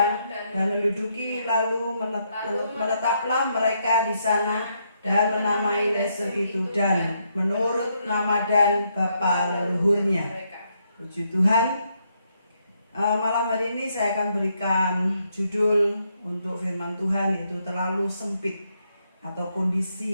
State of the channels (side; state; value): both; inverted; correlation -0.77